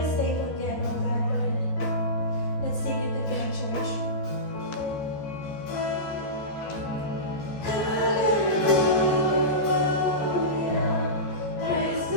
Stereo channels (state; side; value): late; right; 14 ms